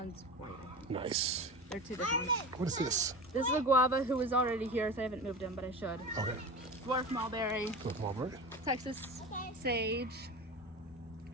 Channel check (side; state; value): both; normal; correlation 0.30